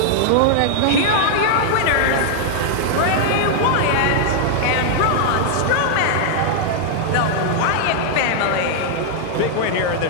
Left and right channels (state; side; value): different; both; correlation -0.01